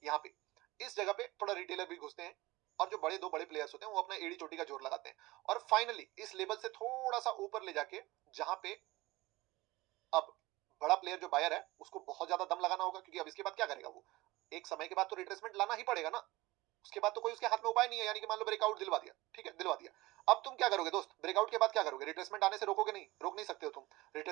यहाँ पे इस जगह पे थोड़ा रिटेलर भी घुसते हैं, और जो दो बड़े प्लेयर्स होते हैं वो अपना एड़ी चोटी का जोर लगाते हैं, और फाइनली इस लेवल से थोड़ा सा ऊपर ले जाके, जहां पे अब बड़ा प्लेयर जो बायर है उसको बहुत ज्यादा दम लगाना होगा, क्योंकि अब इसके बाद क्या करेगा वो, एक समय के बाद तो रिट्रेसमेंट लाना ही पड़ेगा ना, उसके बाद तो कोई उसके हाथ में उपाय नहीं है। यानी कि मान लो ब्रेकआउट दिलवा दिया, ठीक है, दिलवा दिया, अब तुम क्या करोगे दोस्त, ब्रेकआउट के बाद क्या करोगे? रिट्रेसमेंट आने से रोकोगे नहीं, रोक नहीं सकते हो तुम,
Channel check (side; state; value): left; quieter; 20.0 dB